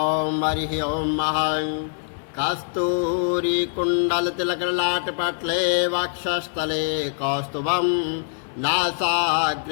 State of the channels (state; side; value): silent; right; 57 dB below the other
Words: हरिः ओम महं कस्तूरी कुण्डलतिलकलाटपटले वक्षस्थले कौस्तुभं